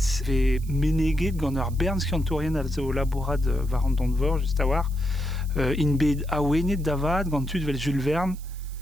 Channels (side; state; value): right; noise; hiss, 22 dB below the sound